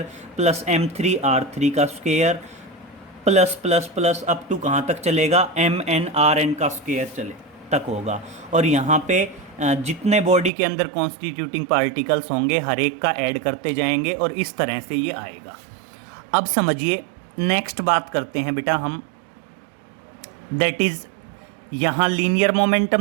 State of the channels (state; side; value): drops out; left; at 10.5 s